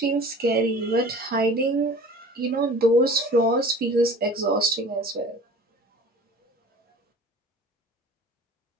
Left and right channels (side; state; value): both; normal; correlation 0.43